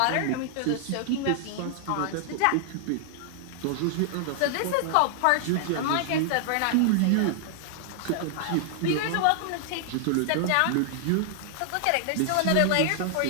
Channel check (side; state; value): both; different; correlation -0.01